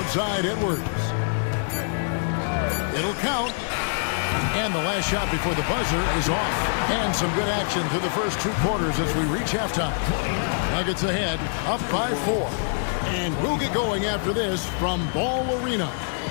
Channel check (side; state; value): right; silent; digital silence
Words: Edwards. It'll count. And the last shot before the buzzer is off. And some good action through the first 2 quarters as we reach halftime. Nuggets ahead, up by 4. And we'll get going after this from Ball Arena.